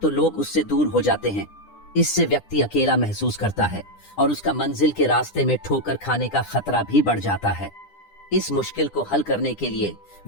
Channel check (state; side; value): late; right; 9.9 ms